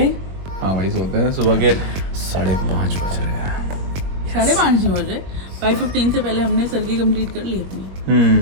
हाँ भाई सोते हैं। सुबह के 5:30 बज रहे हैं। 5:30 नहीं बजे, 5:15 से पहले हमने सरगी कंप्लीट कर ली अपनी।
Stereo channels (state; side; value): late; left; 21 ms